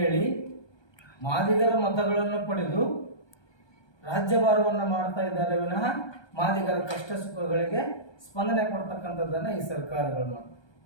ಹೇಳಿ ಮಾದಿಗರ ಮತಗಳನ್ನು ಪಡೆದು ರಾಜ್ಯಭಾರವನ್ನು ಮಾಡ್ತಾ ಇದ್ದಾರೆ ವಿನಃ ಮಾದಿಗರ ಕಷ್ಟ ಸುಖಗಳಿಗೆ ಸ್ಪಂದನೆ ಕೊಡ್ತಕ್ಕಂಥದ್ದನ್ನು ಈ ಸರ್ಕಾರಗಳು ಮಾಡ್ತವೆ.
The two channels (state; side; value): late; right; 1.2 ms